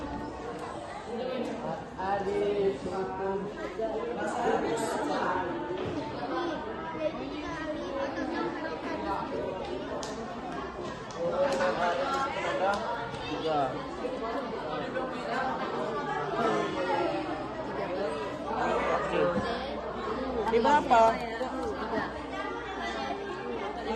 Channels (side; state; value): both; identical; correlation 1.00